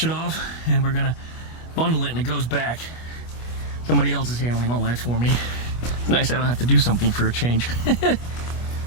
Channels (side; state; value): right; late; 25 ms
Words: it off, and we're going to bundle it, and it goes back. Somebody else is handling all that for me. It's nice I don't have to do something for a change.